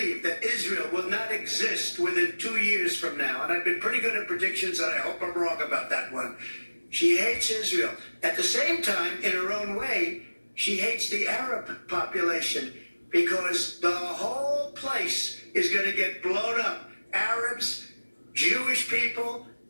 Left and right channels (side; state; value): both; inverted; correlation -1.00